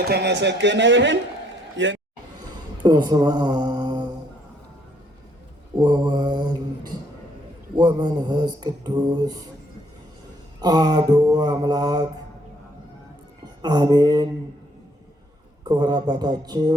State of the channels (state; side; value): normal; both; correlation 0.67